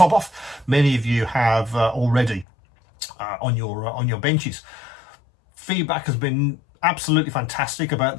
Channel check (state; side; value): drops out; right; at 2.5 s